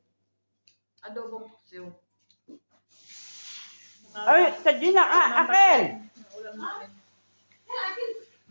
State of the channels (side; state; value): both; inverted; correlation -1.00